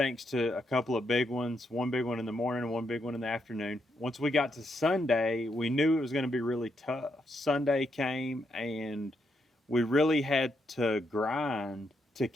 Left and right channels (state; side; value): normal; both; correlation 0.79